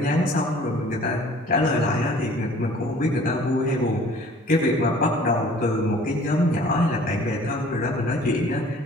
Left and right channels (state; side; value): normal; both; correlation 0.51